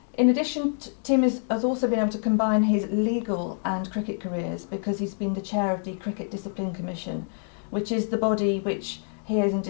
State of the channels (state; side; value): silent; right; digital silence